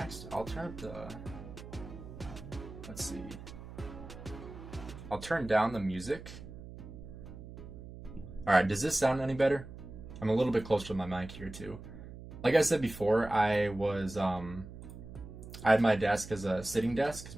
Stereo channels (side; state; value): right; noise; hum, 13 dB below the sound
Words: I'll turn up the, let's see. I'll turn down the music. All right, does this sound any better? I'm a little bit closer to my mic here too. Like I said before, I had my desk as a sitting desk because